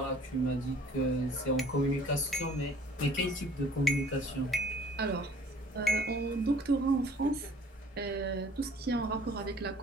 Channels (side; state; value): both; normal; correlation 0.53